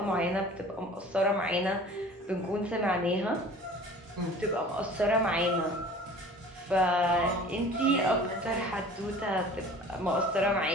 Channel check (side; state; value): both; normal; correlation 0.44